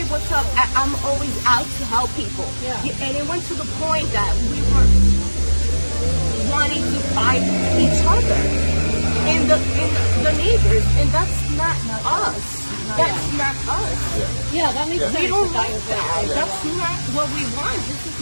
what's up? I'm always out to help people. Yeah. And it went to the point that we were wanting to fight each other and the neighbors, and that's not us. That's not us. Yeah, that makes sense. We don't like that. That's not what we want. This is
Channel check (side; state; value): both; inverted; correlation -1.00